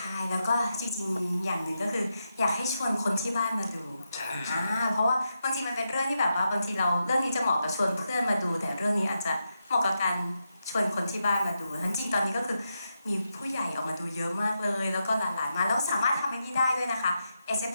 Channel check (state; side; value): inverted; both; correlation -0.86